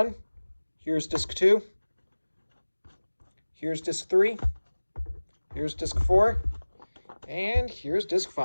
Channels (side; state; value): both; inverted; correlation -1.00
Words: Here's disc 2. Here's disc 3. Here's disc 4. And here's disc